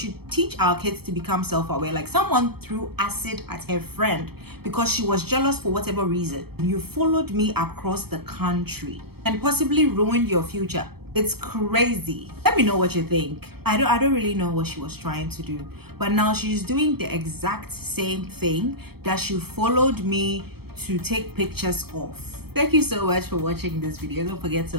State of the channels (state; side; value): late; left; 0.96 ms